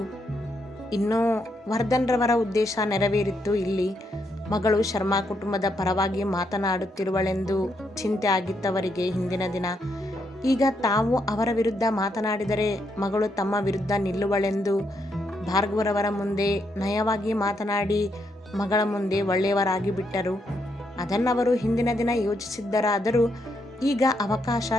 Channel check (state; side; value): normal; both; correlation 0.78